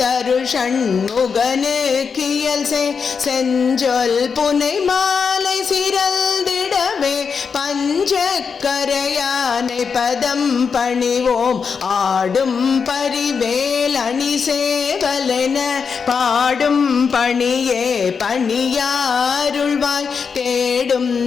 ஷண்முகனு கியல் செஞ்சொல் புனை மாலை சிறந்திடவே பஞ்சக்கரையானை பதம் பணிவோம் ஆடும் பரிவேல் அணி சேவலென பாடும் பணியே பணியாருள்வாய் தேடும்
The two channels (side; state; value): right; quieter; 5.8 dB